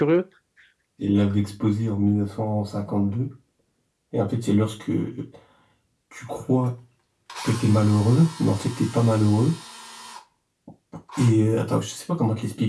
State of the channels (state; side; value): identical; both; correlation 1.00